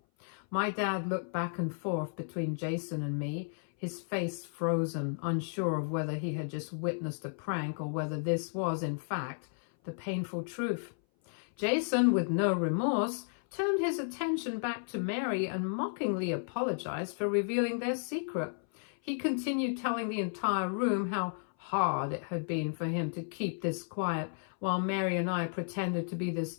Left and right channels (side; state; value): right; silent; 56 dB below the other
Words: My dad looked back and forth between Jason and me, his face frozen, unsure of whether he had just witnessed a prank or whether this was, in fact, the painful truth. Jason, with no remorse, turned his attention back to Mary and mockingly apologized for revealing their secret. He continued telling the entire room how hard it had been for him to keep this quiet, while Mary and I pretended to be